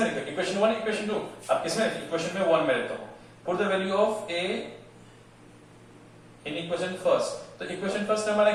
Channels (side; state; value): both; identical; correlation 1.00